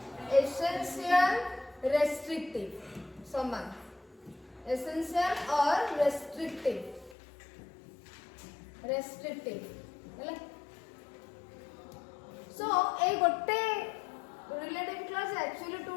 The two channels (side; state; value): right; drops out; at 7.2 s